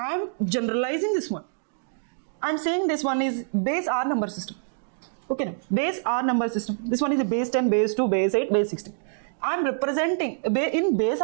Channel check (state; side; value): silent; left; digital silence